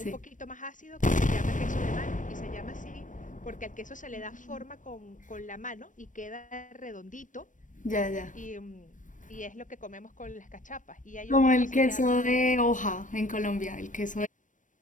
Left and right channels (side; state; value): right; late; 0.37 ms